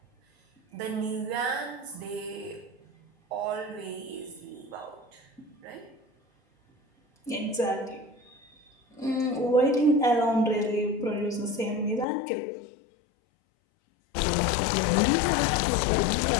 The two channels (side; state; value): right; drops out; at 12.1 s